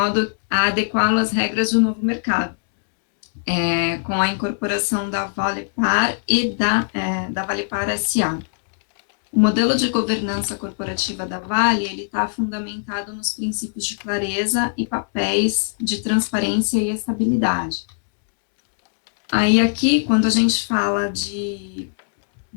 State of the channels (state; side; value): silent; right; digital silence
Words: a adequá-lo às regras do novo mercado, com a incorporação da Valepar e da Valepar SA. O modelo de governança corporativa da Vale ele está fundamentado nos princípios de clareza e papéis de transparência e estabilidade. Aí aqui, quando a gente fala de